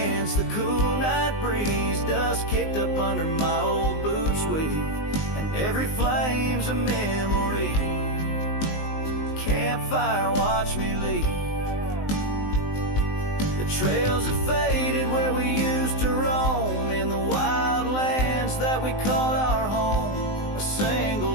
the cool night breeze, dust kicked up under my old boots weave, and every flame's a memory. Campfire watched me leave. The trails have faded where we used to roam, in the wild lands that we called our home. A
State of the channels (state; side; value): late; right; 19 ms